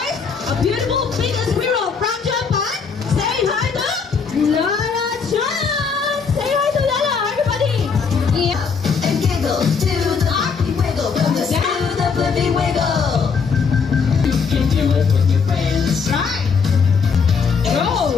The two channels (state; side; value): quieter; right; 5.6 dB